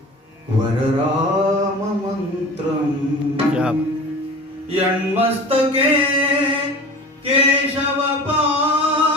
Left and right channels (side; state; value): both; normal; correlation 0.37